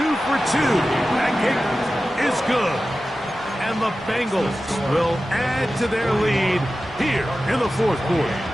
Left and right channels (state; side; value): normal; both; correlation 0.94